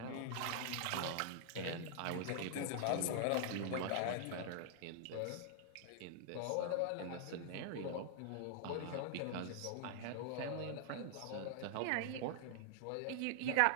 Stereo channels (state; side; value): different; both; correlation 0.00